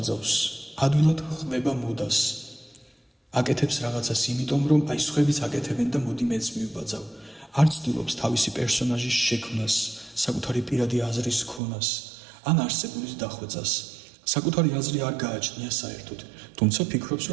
ადვილად ხმება მოდას. აკეთებს რაღაცას იმიტომ, რომ აი სხვებიც აკეთებენ და მოდი მეც მივბაძავ. არ ცდილობს თავისი პერსონაჟის შექმნას, საკუთარი პირადი აზრის ქონას, ან არსებულის დახვეწას. საკუთარი აზრი არ გააჩნია საერთოდ, თუმცა ფიქრობს,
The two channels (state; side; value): drops out; left; at 11.6 s